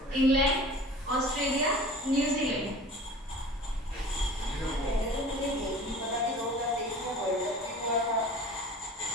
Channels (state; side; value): normal; both; correlation 0.41